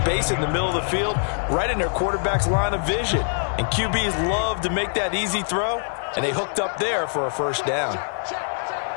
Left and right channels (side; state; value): right; silent; digital silence